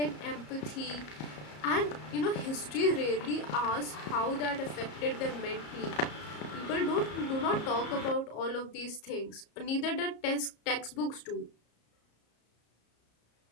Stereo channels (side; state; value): right; late; 34 ms